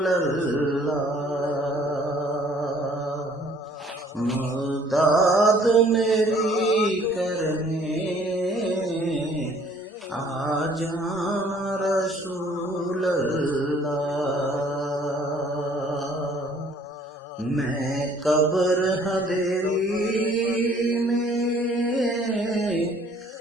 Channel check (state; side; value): normal; both; correlation 0.58